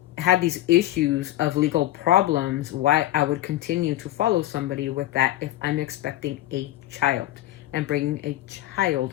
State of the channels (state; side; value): quieter; right; 14.9 dB